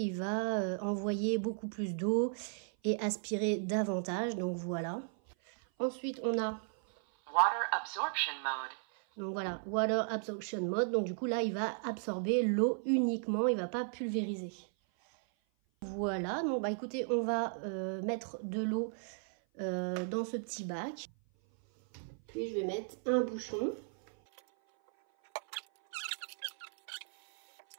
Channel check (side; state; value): left; silent; 54 dB below the other